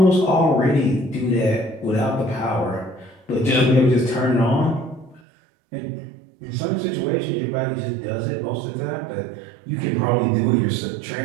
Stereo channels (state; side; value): drops out; left; at 5.2 s